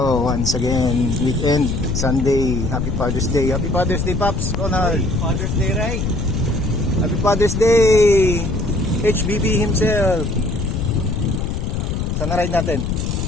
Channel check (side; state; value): left; noise; rumble, 2 dB below the sound